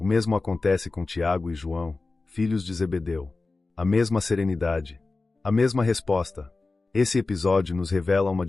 mesmo acontece com Tiago e João, filhos de Zebedeu. A mesma serenidade, a mesma resposta. Esse episódio nos revela uma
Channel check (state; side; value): quieter; right; 3.6 dB